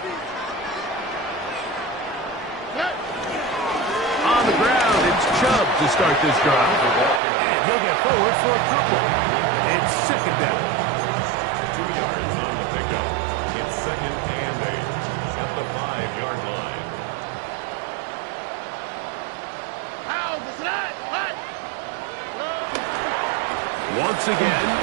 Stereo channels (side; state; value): left; drops out; at 7.2 s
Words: On the ground, it's Chubb to start this drive. And he'll get forward for a couple. It's second down. 2 yards on the pickup. It's second and 8 at the 5-yard line. Once again,